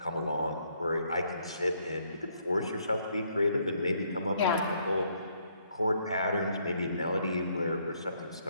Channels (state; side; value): inverted; both; correlation -0.70